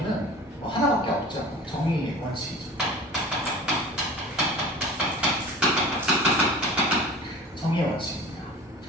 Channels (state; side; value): normal; both; correlation 0.39